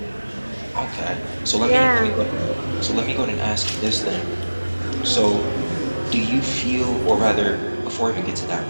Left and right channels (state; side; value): inverted; both; correlation -1.00